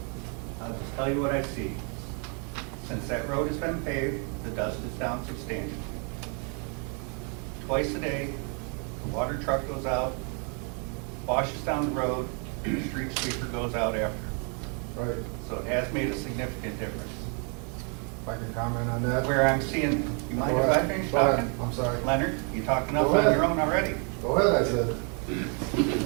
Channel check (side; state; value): left; quieter; 38.1 dB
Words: I'll just tell you what I see. Since that road has been paved, the dust is down substantially. Twice a day, the water truck goes out, washes down the road, and the street sweeper goes out after. Right. So it has made a significant difference. If I can comment on that? Where I'm seeing, you mind if I finish Go ahead. talking? I'm sorry. Leonard, you talking enough Go ahead. on your own already? Go ahead, I said.